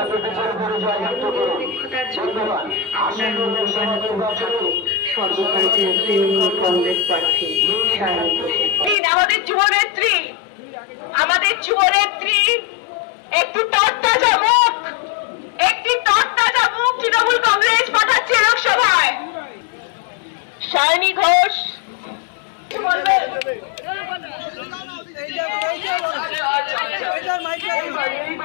সর্বভারতীয় তৃণমূল কংগ্রেস প্রার্থী সায়নী ঘোষের আমাদের যুবনেত্রী একটি তরতাজা মুখ তৃণমূল কংগ্রেস পাঠাচ্ছে লোকসভায়। সায়নী ঘোষ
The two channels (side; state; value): right; drops out; at 9.0 s